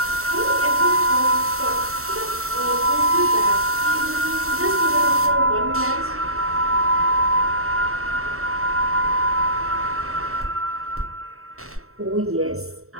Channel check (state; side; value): late; left; 0.63 ms